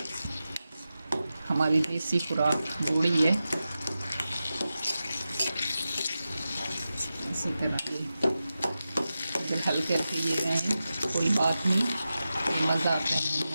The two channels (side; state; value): both; inverted; correlation -0.92